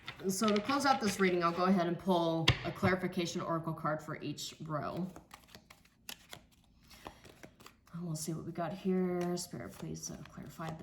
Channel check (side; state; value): both; identical; correlation 1.00